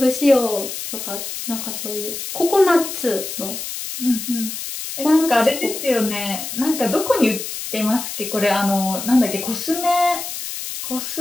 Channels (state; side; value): noise; left; hiss, 7 dB below the sound